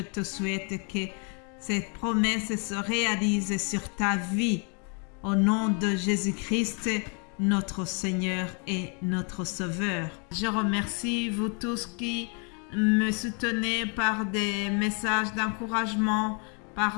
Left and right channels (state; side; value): quieter; right; 37.5 dB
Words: te souhaite que ces promesses se réalisent sur ta vie. Au nom de Jésus-Christ, notre Seigneur et notre Sauveur. Je remercie vous tous qui me soutenez par des messages d'encouragement,